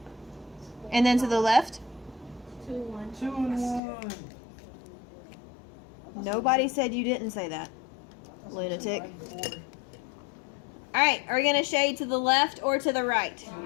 And then to the left? 2, 1. 2 and 1. Nobody said you didn't say that. Lunatic. 4. Alright, are we going to shade to the left or to the right?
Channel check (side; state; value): right; drops out; at 3.8 s